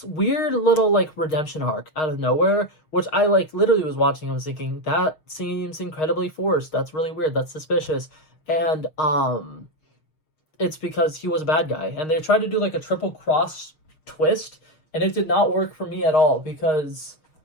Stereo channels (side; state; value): right; late; 6.4 ms